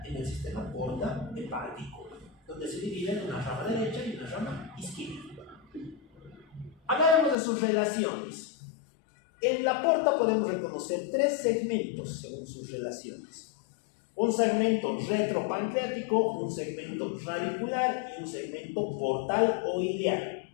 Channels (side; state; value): right; drops out; at 7.4 s